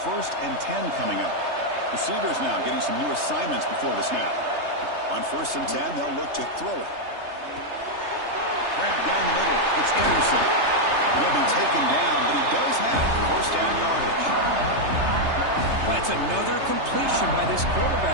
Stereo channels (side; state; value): left; late; 3.3 ms